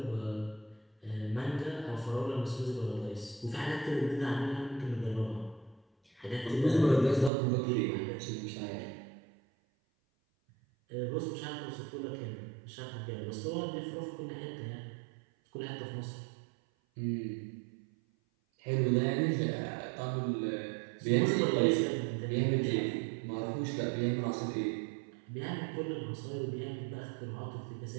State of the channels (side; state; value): left; drops out; at 7.3 s